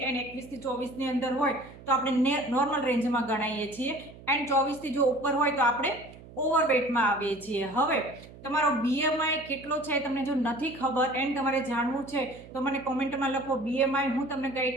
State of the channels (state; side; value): noise; right; hum, 19 dB below the sound